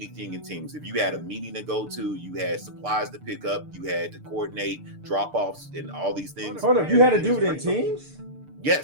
in Teams. If you had a meeting to go to, you had supplies to pick up, you had to coordinate drop-offs and all these things. Hold up, you had to do it in Teams?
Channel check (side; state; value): left; late; 6.7 ms